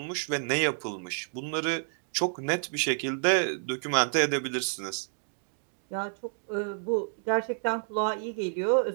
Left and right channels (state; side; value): silent; left; 58 dB below the other